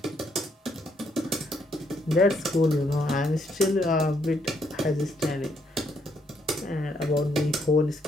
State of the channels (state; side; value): normal; both; correlation 0.73